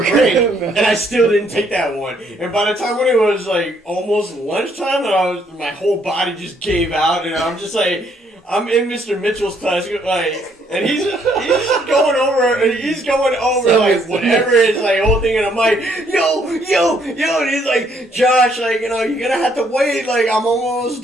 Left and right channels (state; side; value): normal; both; correlation 0.69